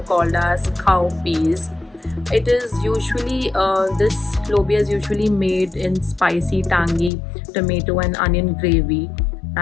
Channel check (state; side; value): drops out; right; at 7.1 s